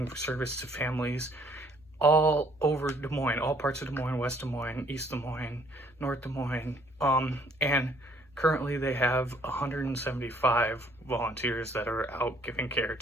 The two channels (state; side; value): normal; both; correlation 0.62